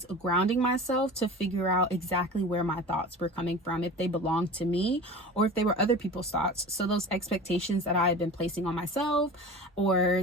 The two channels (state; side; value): normal; both; correlation 0.36